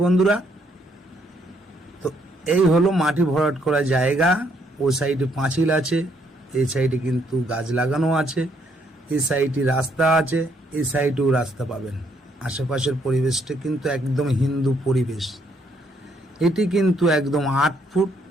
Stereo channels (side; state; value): both; normal; correlation 0.70